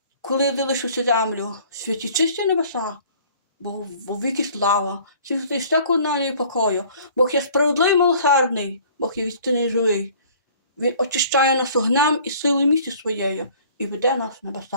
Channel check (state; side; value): inverted; both; correlation -0.52